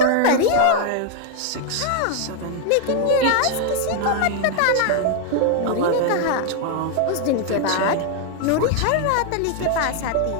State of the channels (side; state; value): both; different; correlation 0.00